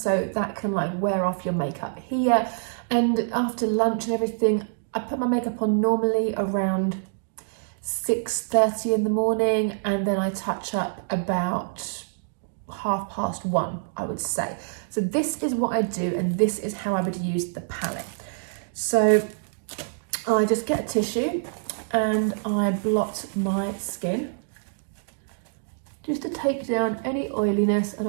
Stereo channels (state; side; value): silent; left; digital silence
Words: so that can like wear off your makeup here. And after lunch and everything, I put my makeup on normally around 6:30 in the morning, and then I touch up about 1:30, I would say. So this is what I do, and this is how I would use the palette. So I just get a tissue and I blot my skin just to take down any oiliness, and